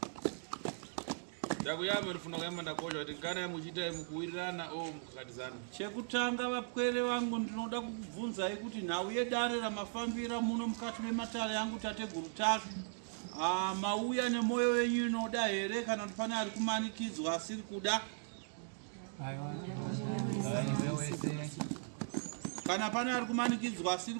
Ndakuyama rifuna kuyamba ndakosha kuti kana muchiita mukuwirirana o mukakatizana. Chekutanga vapwere vangu ndinoda kukubvunzai kuti nhau yedare ramafambira muno mukati mematare yangu tateguru take. Mauya nemwoyo wenyu inoda here kana kuti pane ari kumanikidzwa asiri kuda? Kana pane ari kumanikidzwa asiri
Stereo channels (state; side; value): silent; left; digital silence